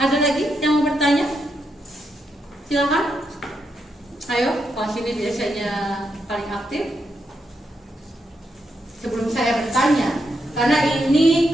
lagi yang mau bertanya? Silakan. Ayo, kelas ini biasanya paling aktif. Sebelum saya bertanya, karena ini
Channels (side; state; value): both; normal; correlation 0.82